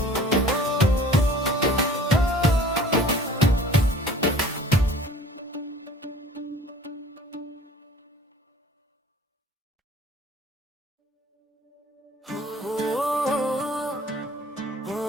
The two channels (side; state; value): both; normal; correlation 0.48